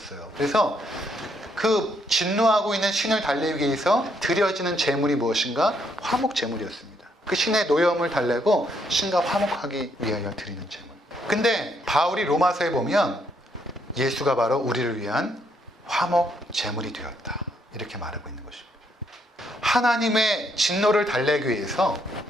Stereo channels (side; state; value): both; normal; correlation 0.73